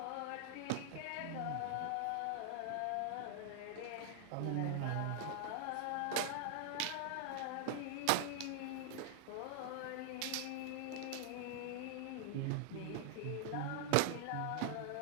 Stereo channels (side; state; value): both; different; correlation 0.00